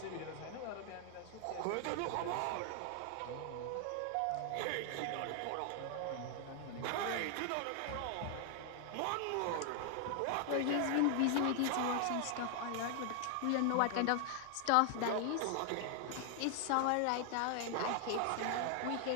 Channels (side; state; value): both; different; correlation 0.00